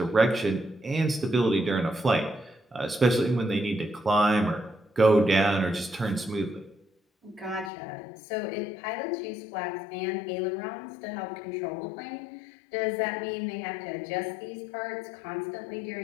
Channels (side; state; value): right; drops out; at 7.7 s